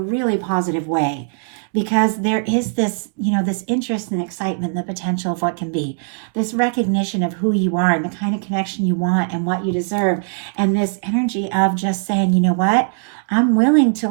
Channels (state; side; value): silent; left; 66 dB below the other